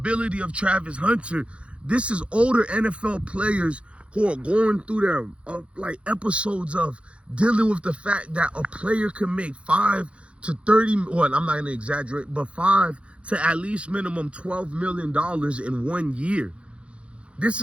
of Travis Hunter. This is older NFL players who are going through their like episodes of dealing with the fact that a player can make 5 to 30, well, I'm not gonna exaggerate, but 5 to at least minimum $12 million in 1 year. This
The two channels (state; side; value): late; left; 0.060 ms